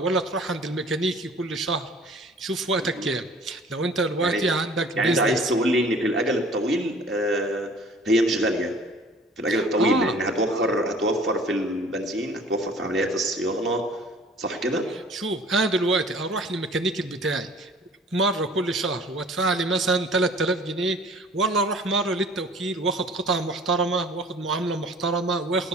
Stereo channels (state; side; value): normal; both; correlation 0.50